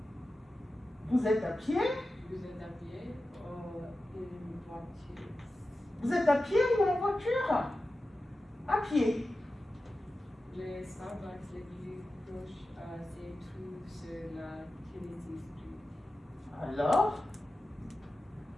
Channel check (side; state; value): both; normal; correlation 0.93